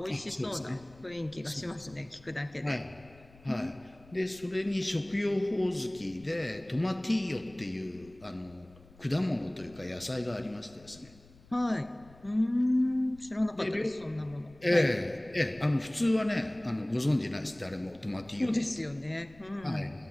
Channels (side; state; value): left; noise; rumble, 23 dB below the sound